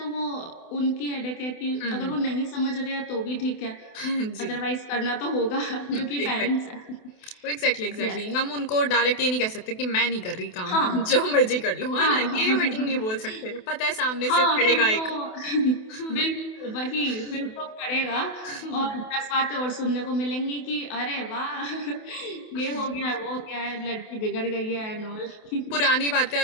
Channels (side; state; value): right; late; 28 ms